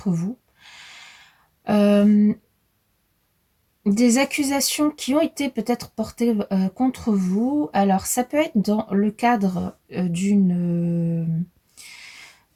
vous. Des accusations qui ont été peut-être portées contre vous. Alors, ça peut être dans le cadre d'une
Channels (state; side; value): identical; both; correlation 1.00